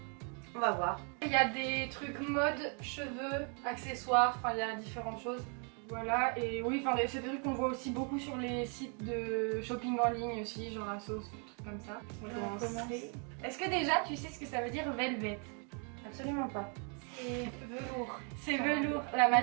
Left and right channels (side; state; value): left; quieter; 39.1 dB